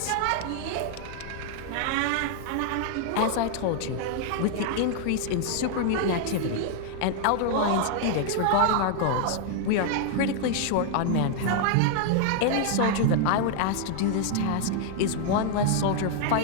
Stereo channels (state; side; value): different; both; correlation 0.00